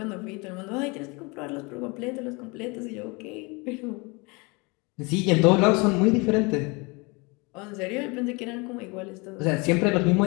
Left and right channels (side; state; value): right; quieter; 28.0 dB